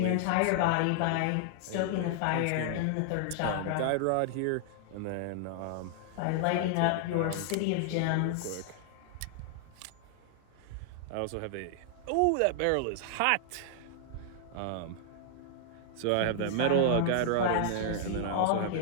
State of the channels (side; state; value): both; different; correlation -0.01